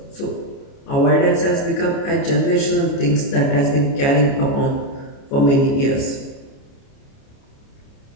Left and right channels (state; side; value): late; right; 29 ms